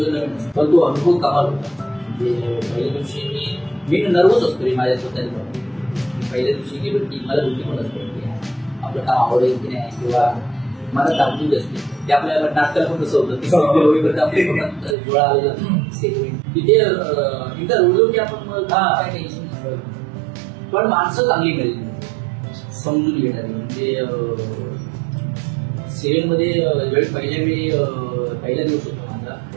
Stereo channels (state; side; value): drops out; left; at 15.0 s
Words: नवीन असतं, पण तो अनुभव कमाल होता. म्हणजे पहिल्या दिवशी मी नर्वस असतो रे माझ्या स्वतःच्या. पहिल्या दिवशी गेलो की मला भीती पण असते की आपलं काम आवडेल की नाही किंवा मला दाखवून असते. ते आपल्या नाटकाला पण कसं होतं आपले डोळा आलेला तिथे एकदा रोजलो की आपण मग काय टेन्शन नसतं, पण माणसं चांगली मिळेल समजून घेणारी. म्हणजे सिरियल मध्ये ज्यावेळी पहिला दिवस होता माझा,